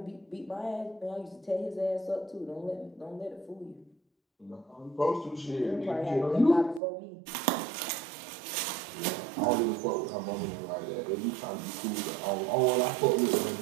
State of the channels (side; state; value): left; drops out; at 6.8 s